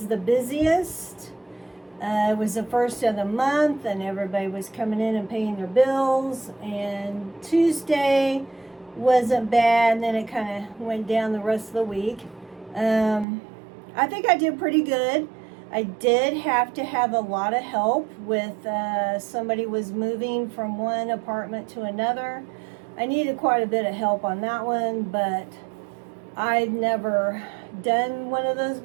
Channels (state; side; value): drops out; left; at 13.2 s